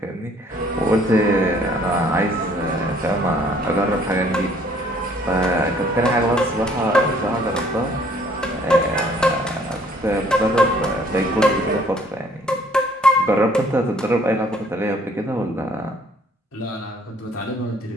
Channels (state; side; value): normal; both; correlation 0.60